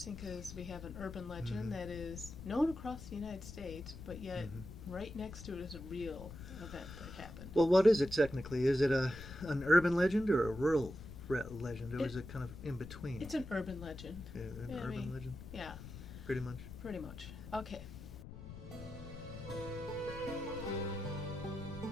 because we have an urban legend that is known across the United States, but yet right next to it is a real event that happened. Well, what is it technically? Is it an urban legend or a rural legend, or is it kind of in between? It's an urban legend. Yeah, urban legend? Yeah. Pretty much? Pretty much. Okay.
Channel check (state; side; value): noise; left; rumble, 12 dB below the sound